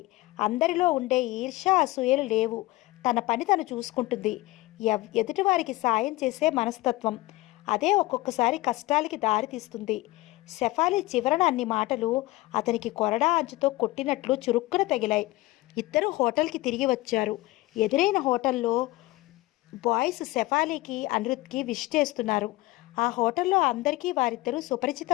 అందరిలో ఉండే ఈర్ష్య అసూయలు లేవు. తన పని తను చూసుకుంటుంది. ఎదుటివారికి సాయం చేసే మనస్తత్వం. అదే ఒక్కొక్కసారి కష్టాలకి దారితీస్తుంది. శెఫాలి చివరన అన్ని మాటలు అతనికి కొరడా అంచుతో కొట్టినట్లు చురుక్కున తగిలాయి. ఇద్దరు హోటల్కి తిరిగి వచ్చారు. ఎదురైన హోటల్లో బాయ్స్ శెఫాలీకి అనిరుద్కి విష్ చేస్తున్నారు. ఆ హోటల్లో అందరికీ వారిద్దరూ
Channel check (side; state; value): right; quieter; 19.3 dB